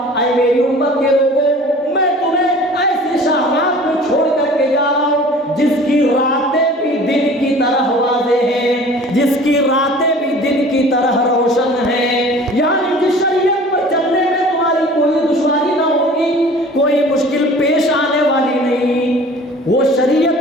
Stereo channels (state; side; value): normal; both; correlation 0.45